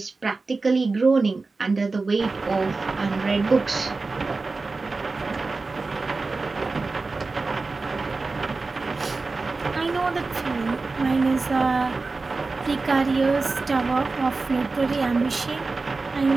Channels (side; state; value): left; quieter; 3.8 dB